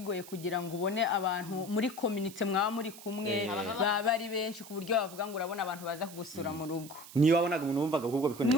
kugira ngo ubone abantu muri community mwaba muri kumwe baba ari benshi ku buryo bavuga ngo urabona abantu baza kugusura mu rugo. Niyo wabonaga umuntu wumvaga ahubwo bikoneye?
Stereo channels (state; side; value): noise; right; hiss, 16 dB below the sound